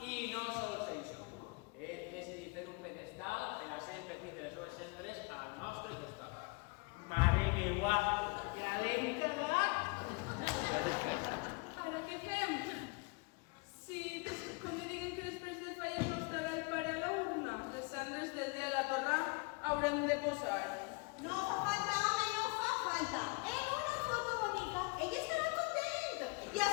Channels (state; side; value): quieter; right; 29.5 dB